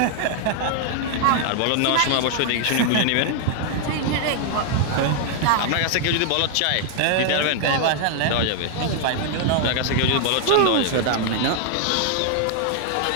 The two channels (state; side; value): different; both; correlation 0.00